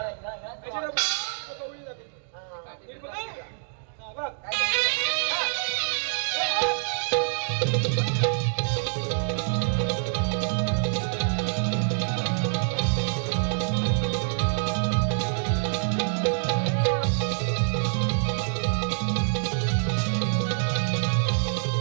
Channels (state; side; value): silent; left; digital silence